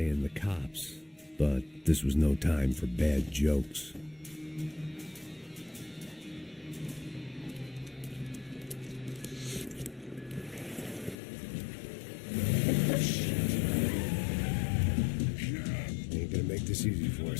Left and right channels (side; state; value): right; drops out; at 11.2 s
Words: the cops, but this was no time for bad jokes. Ain't gonna make this easy for